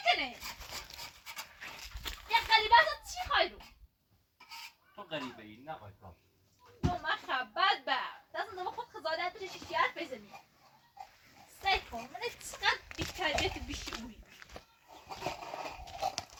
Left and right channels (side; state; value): both; identical; correlation 1.00